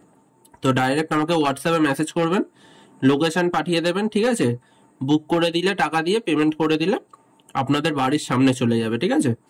তো ডাইরেক্ট আমাকে হোয়াটসঅ্যাপে মেসেজ করবেন, লোকেশন পাঠিয়ে দেবেন, ঠিক আছে। বুক করে দিলে, টাকা দিয়ে পেমেন্ট করে দিলে আপনাদের বাড়ির সামনে চলে যাবে, ঠিক আছে।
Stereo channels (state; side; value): identical; both; correlation 1.00